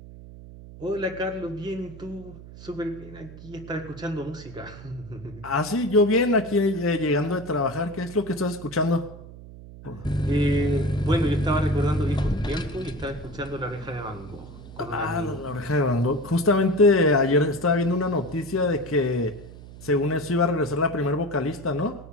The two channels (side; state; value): right; noise; hum, 16 dB below the sound